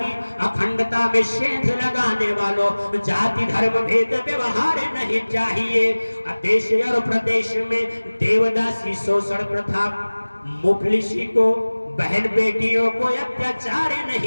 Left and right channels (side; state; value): both; inverted; correlation -1.00